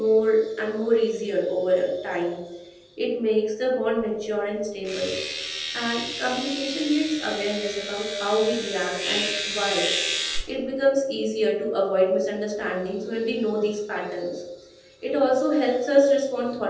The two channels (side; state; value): both; identical; correlation 1.00